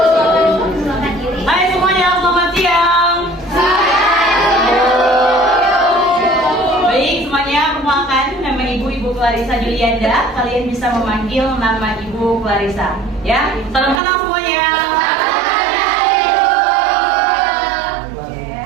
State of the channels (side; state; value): left; drops out; at 14.0 s